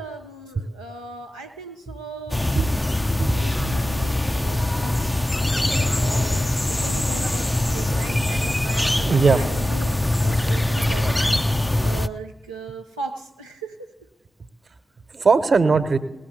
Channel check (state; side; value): normal; both; correlation 0.92